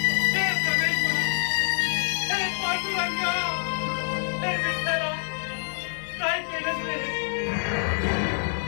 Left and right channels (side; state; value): right; silent; digital silence